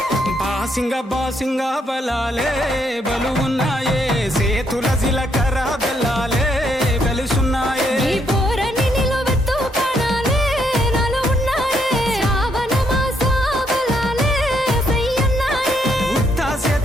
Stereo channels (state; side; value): normal; both; correlation 0.74